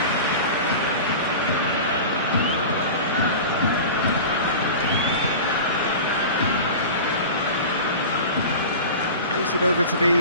It over to the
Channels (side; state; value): both; inverted; correlation -0.33